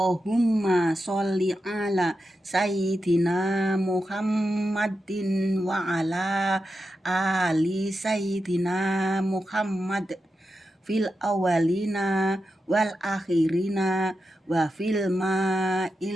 sholli ala sayyidina Muhammadin wa ala ali sayyidina Muhammad fil awalina wal akhirina wa fil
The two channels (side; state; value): both; normal; correlation 0.89